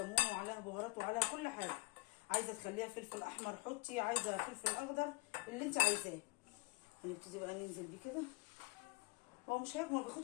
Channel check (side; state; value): right; quieter; 24.4 dB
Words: وعليها بهارات وعليها كل حاجه. عايزه تخليها فلفل احمر حطي، عايزه فلفل اخضر اللي انت عايزاه. هنبتدي بقى ننزل بيه كده. هو مش هياكل، ما